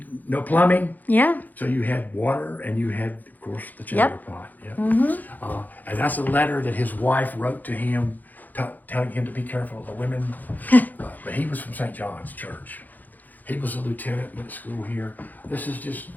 no plumbing, Yeah. so you had water and you had, of course, the chamber pot. Yep. And that's a letter that his wife wrote to him, telling him to be careful of the women. But he was from St. John's Church. He was a lieutenant, went to school here. This is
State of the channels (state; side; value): late; right; 0.083 ms